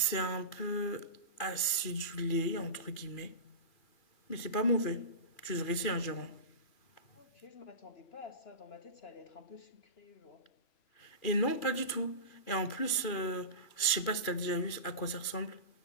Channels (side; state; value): right; late; 2.5 ms